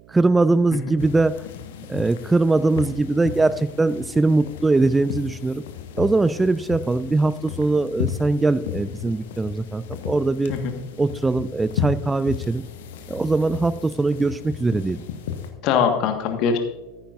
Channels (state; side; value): noise; right; hum, 27 dB below the sound